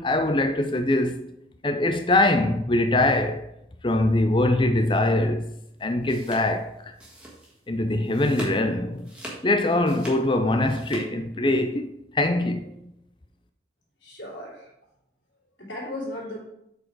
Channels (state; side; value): normal; both; correlation 0.53